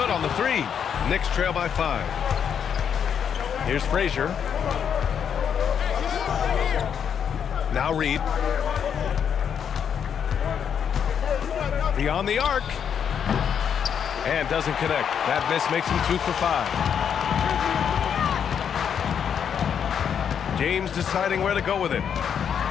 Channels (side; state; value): right; quieter; 7.9 dB